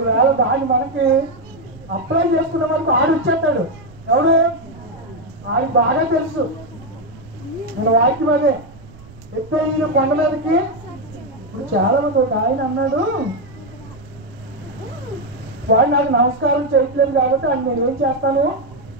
దాన్ని మనకి అప్లై చేసుకున్న వరకు ఆడు వచ్చేస్తాడు. ఎవడు? ఆయనకు బాగా తెలుసు మన వాక్యం అదే. ఎత్తైన కొండ మీదకి ఇప్పుడు చాలా మంది ఒక ఆయన అన్నాడు, వాడు నాకు నమస్కారం చేయట్లేదు కాబట్టి ఆయన నేను ఏం చేస్తాను?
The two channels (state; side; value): noise; right; rumble, 20 dB below the sound